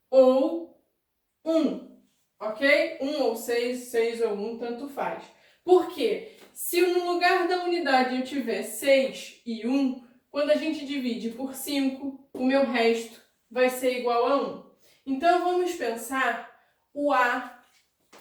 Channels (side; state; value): both; identical; correlation 1.00